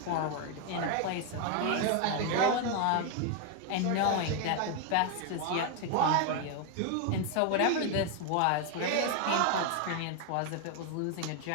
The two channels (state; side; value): different; both; correlation 0.01